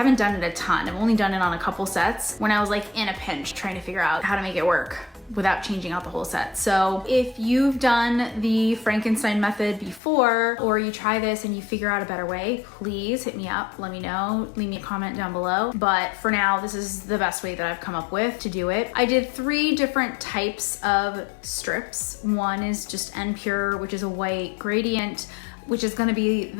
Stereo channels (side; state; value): right; drops out; at 10.0 s